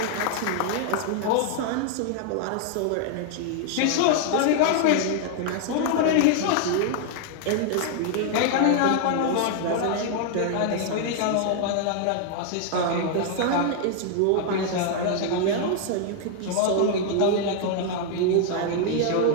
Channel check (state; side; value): different; both; correlation 0.00